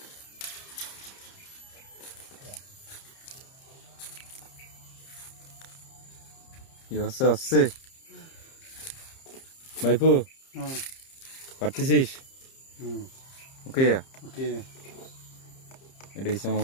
কি হচ্ছে হচ্ছে ভাইপু, পারতেছিস? ওকে ওকে, এটা হচ্ছে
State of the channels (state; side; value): late; right; 30 ms